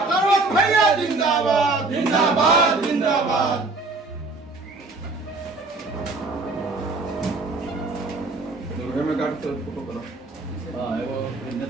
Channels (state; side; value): quieter; left; 3.4 dB